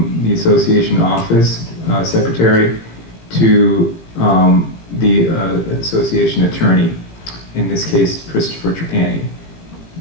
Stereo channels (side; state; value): right; late; 17 ms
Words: the association office secretary to the association attorney, in this case Christopher Trapani.